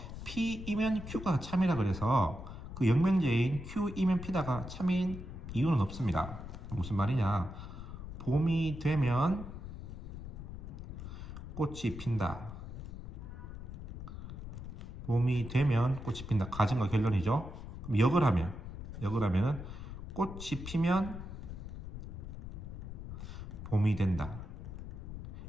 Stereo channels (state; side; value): noise; left; rumble, 9 dB below the sound